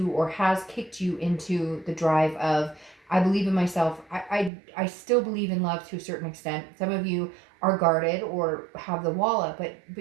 or has kicked you into the drive of, I believe in myself. I still believe in love to a certain extent. Some of you are guarded or have the wall up, but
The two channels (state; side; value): drops out; left; at 4.5 s